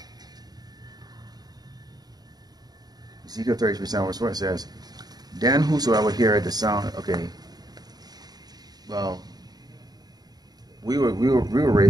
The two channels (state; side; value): late; left; 0.19 ms